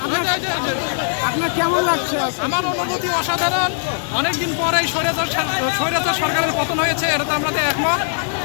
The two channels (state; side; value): silent; right; 62 dB below the other